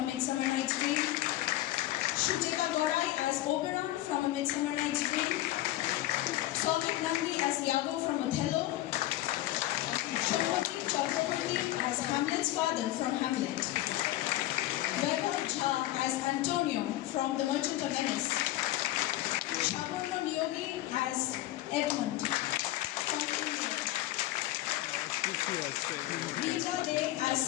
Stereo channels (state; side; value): quieter; right; 15.7 dB